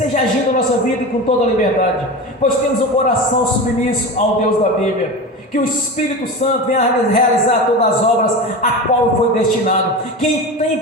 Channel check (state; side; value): normal; both; correlation 0.27